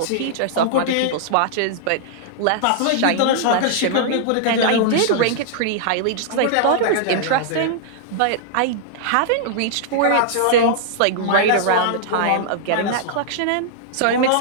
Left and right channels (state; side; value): different; both; correlation -0.01